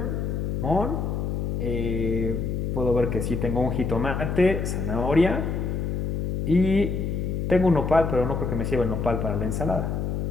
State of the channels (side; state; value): left; noise; hum, 1 dB below the sound